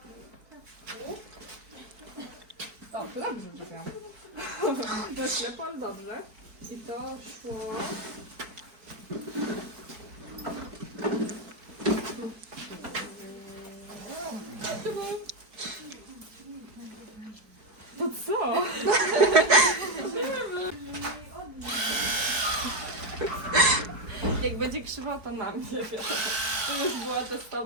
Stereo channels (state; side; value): late; left; 4.6 ms